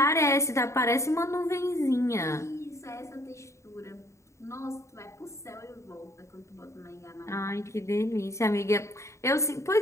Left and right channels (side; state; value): right; late; 0.14 ms